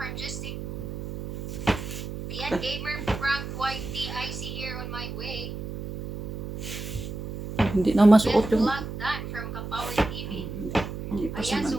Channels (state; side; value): noise; right; hum, 7 dB below the sound